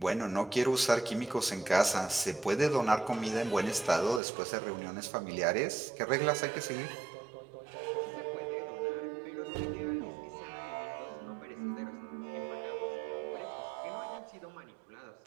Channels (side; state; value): left; drops out; at 4.2 s